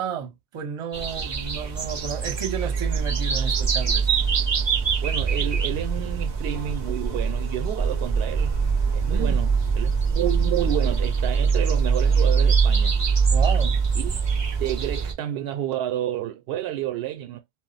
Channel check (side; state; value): left; quieter; 5.8 dB